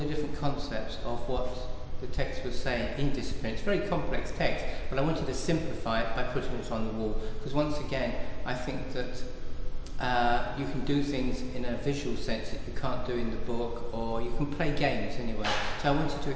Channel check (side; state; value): both; identical; correlation 1.00